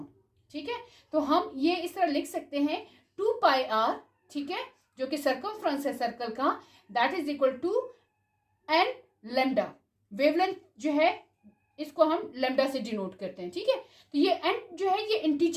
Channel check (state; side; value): identical; both; correlation 1.00